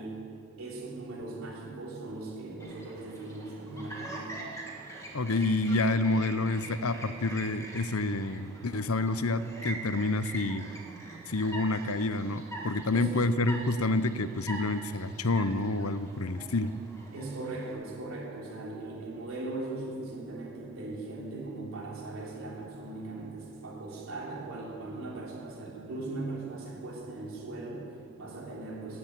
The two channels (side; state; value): both; normal; correlation 0.40